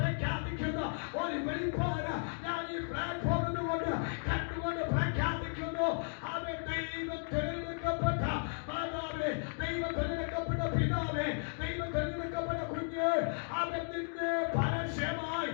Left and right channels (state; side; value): silent; right; 55 dB below the other